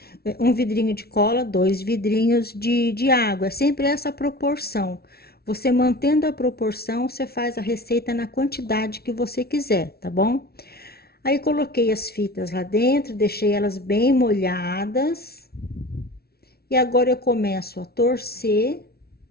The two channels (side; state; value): right; late; 0.45 ms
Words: um vidrinho de cola, 2 vidrinhos de água. É sempre essa proporção. Você mantendo a proporção, você faz a receita na quantidade que você quiser, tá bom? Aí coloquei as fitas lá dentro, deixei elas bem molhadas. E agora eu começo a torcer